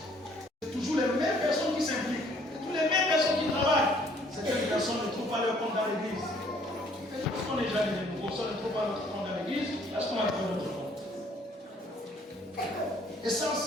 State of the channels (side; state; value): both; normal; correlation 0.61